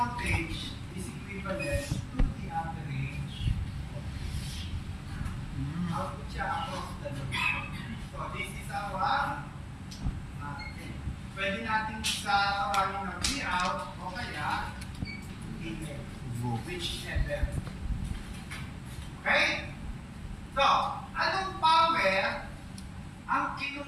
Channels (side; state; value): both; identical; correlation 1.00